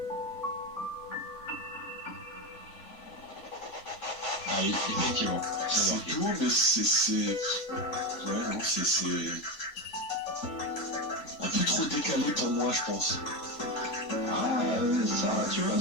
Ah oui, effectivement. C'est tout, mais c'est. Ouais, non, c'est. Un peu trop décalé pour moi, je pense. Ah, ça, tu vois,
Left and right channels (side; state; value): right; late; 3.6 ms